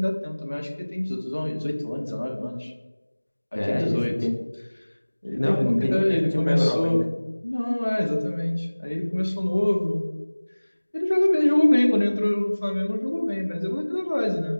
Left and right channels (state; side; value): inverted; both; correlation -1.00